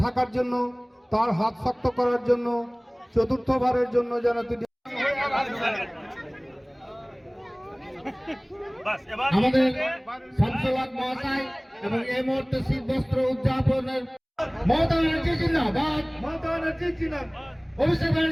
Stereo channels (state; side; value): identical; both; correlation 1.00